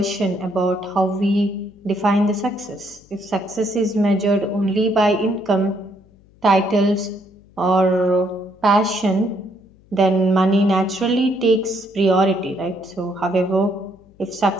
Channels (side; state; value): left; noise; hum, 29 dB below the sound